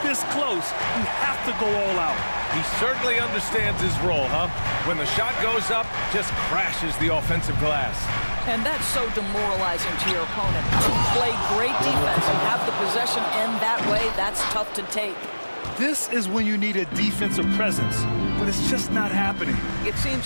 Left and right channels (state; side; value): inverted; both; correlation -1.00